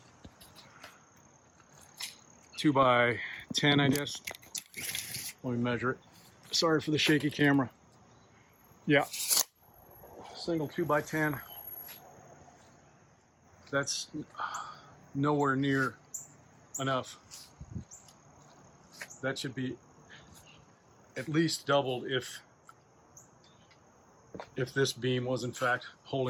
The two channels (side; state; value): both; identical; correlation 1.00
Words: 2x10, I guess. Let me measure it. Sorry for the shaky camera. Yeah, single 2x10. That's nowhere near enough. That should be at least doubled if this beam was in fact